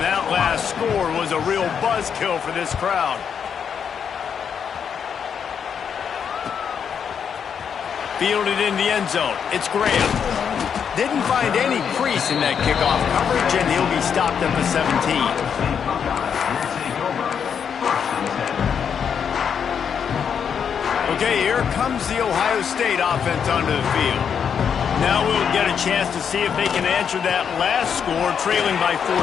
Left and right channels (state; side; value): quieter; right; 7.4 dB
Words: that last score was a real buzzkill for this crowd. Fielded in the end zone. It's Graham. Didn't find any crease in that kickoff coverage, and he'll be stopped at the 17. Okay, here comes the Ohio State offense onto the field. Now we'll get a chance to see if they can answer that last score, trailing by 14,